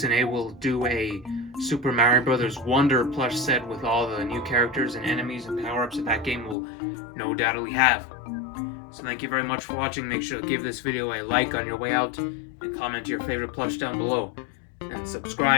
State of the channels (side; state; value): right; drops out; at 6.6 s